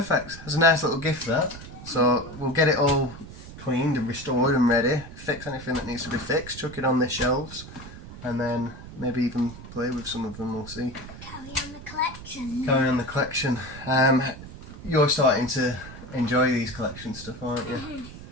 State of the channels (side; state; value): right; noise; rumble, 14 dB below the sound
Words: That's a nice little gift, that. So we'll get it all cleaned and restored and ready. Fix anything that needs to be fixed. Chuck it on the shelves, and then maybe even play with some of them. We'll see. Carry on the collection. Carry on the collection. You're starting to enjoy these collection stuff, aren't you?